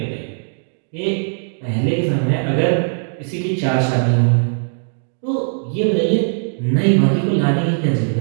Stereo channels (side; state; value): left; silent; digital silence